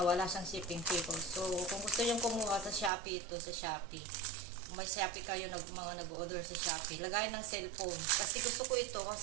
wala siyang shipping fee ko. So, kung gusto nyo kumuha sa Shopee, ito sa Shopee. Kung may Shopee kayo, mga nag-order sa Shopee, lagay ng cellphone. Kasi gusto ko ito,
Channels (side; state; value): left; drops out; at 2.9 s